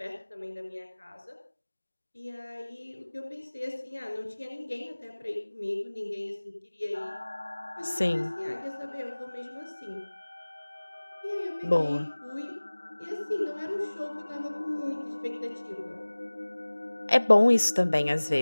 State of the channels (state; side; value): inverted; both; correlation -1.00